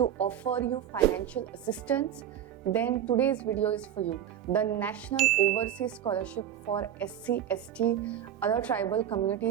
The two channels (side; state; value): left; quieter; 10.3 dB